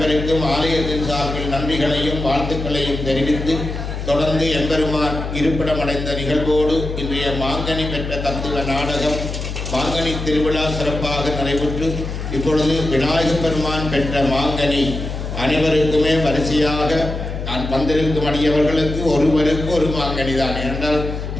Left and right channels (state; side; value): noise; left; hum, 5 dB below the sound